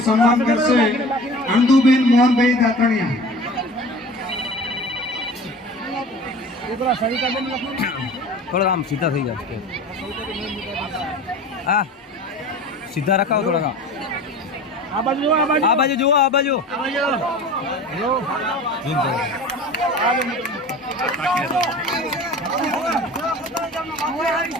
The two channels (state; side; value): normal; both; correlation 0.39